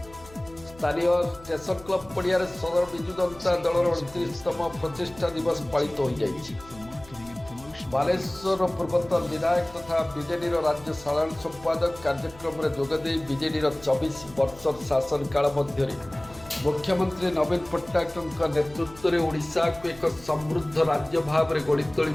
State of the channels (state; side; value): noise; left; hum, 21 dB below the sound